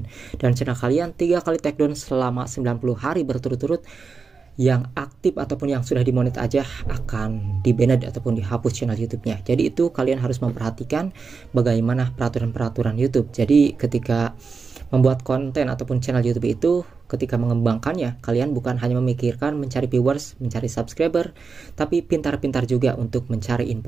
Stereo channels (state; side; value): quieter; left; 4.9 dB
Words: Dan channel kalian 3 kali take down selama 90 hari berturut-turut, yang aktif ataupun yang sudah dimonet aja akan di-banned ataupun dihapus channel YouTube-nya. Jadi itu kalian harus memperhatikan bagaimana peraturan-peraturan YouTube. Jadi ketika membuat konten ataupun channel YouTube itu, ketika mengembangkannya, kalian bukan hanya memikirkan mencari viewers, mencari subscriber, tapi pintar-pintar juga untuk mencari